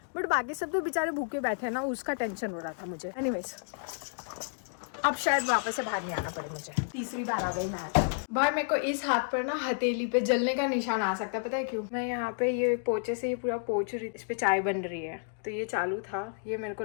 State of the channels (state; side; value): silent; right; digital silence